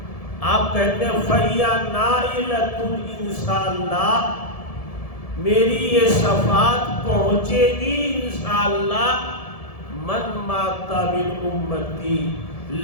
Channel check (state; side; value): late; right; 1.7 ms